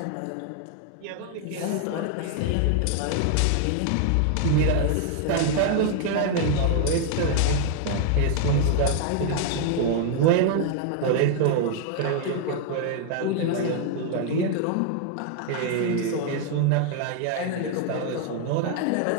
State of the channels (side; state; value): both; different; correlation 0.00